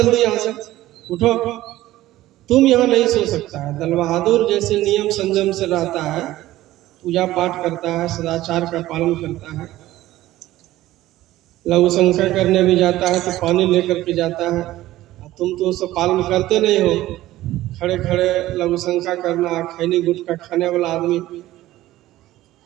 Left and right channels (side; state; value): left; quieter; 15.7 dB